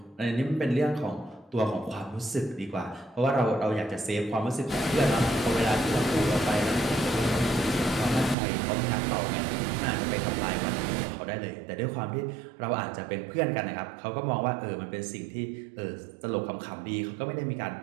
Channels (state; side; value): drops out; left; at 8.3 s